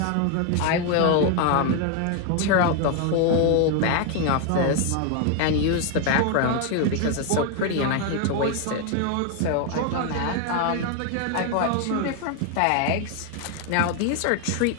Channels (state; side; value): different; both; correlation 0.01